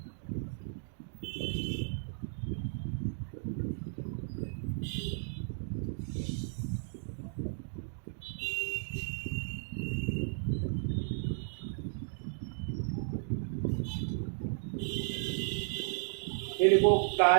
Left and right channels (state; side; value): silent; left; digital silence